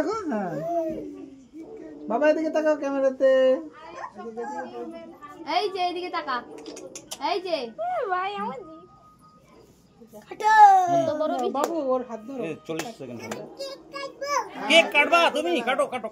হ্যাঁ বাবা এদিকে তাকাও ক্যামেরাতে। এই যে এইদিকে তাকা, এই যে ভাই আমার বাবু ওর হাত ধরো। 40 সেকেন্ড হবে। কেক কাটবা তুমি? কাটো কাটো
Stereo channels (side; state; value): both; identical; correlation 1.00